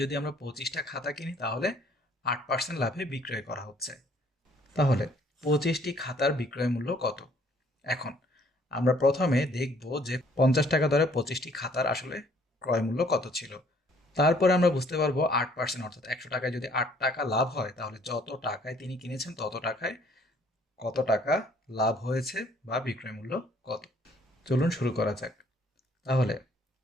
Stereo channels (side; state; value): both; normal; correlation 0.61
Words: যদি আমরা 25টা খাতা কিনি তাহলে 8% লাভে বিক্রয় করা হচ্ছে। তাহলে 25টি খাতার বিক্রয় মূল্য কত? এখন আমরা প্রথমে দেখব যে 50 টাকা দরে 25টি খাতার আসলে ক্রয় মূল্য কত ছিল। তারপরে আমরা বুঝতে পারবো 8%, অর্থাৎ 100 টাকায় যদি 8 টাকা লাভ হয় তাহলে যত টাকায় তিনি কিনেছেন তত টাকায় কত টাকা লাভ হয়েছে বা বিক্রয় মূল্য কত। চলুন শুরু করা যাক। তাহলে